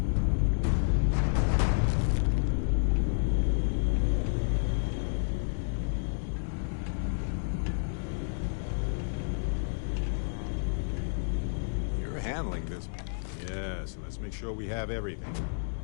Handling this. Yeah, so let's make sure we have everything.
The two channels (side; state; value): right; silent; digital silence